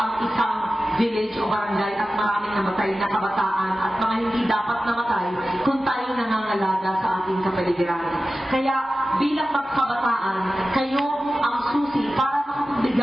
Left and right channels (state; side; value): normal; both; correlation 0.94